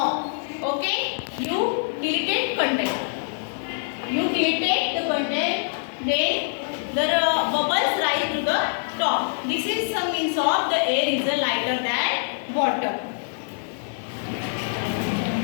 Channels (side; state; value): right; silent; digital silence